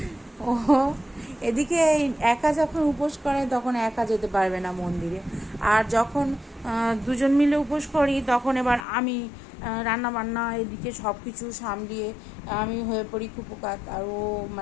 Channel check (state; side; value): drops out; right; at 8.8 s